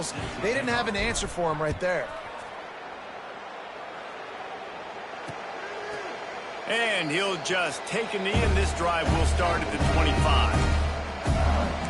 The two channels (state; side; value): identical; both; correlation 1.00